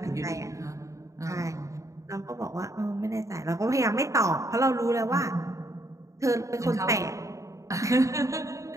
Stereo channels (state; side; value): late; left; 0.15 ms